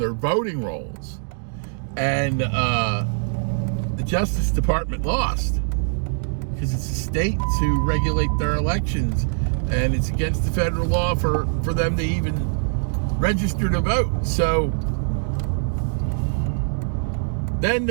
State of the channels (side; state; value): left; silent; digital silence